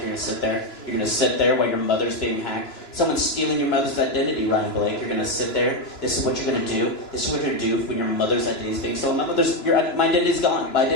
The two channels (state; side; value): late; right; 2.9 ms